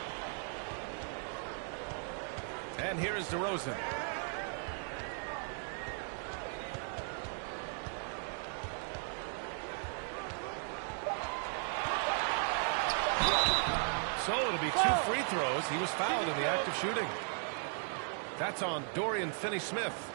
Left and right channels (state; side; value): silent; left; 53 dB below the other